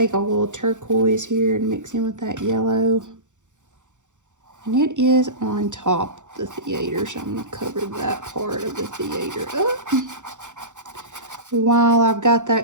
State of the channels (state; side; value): late; left; 0.85 ms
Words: a little turquoise here and mix in with that yellow. And it is on top of the theater, so I'm gonna cover that part of the theater up. While I've got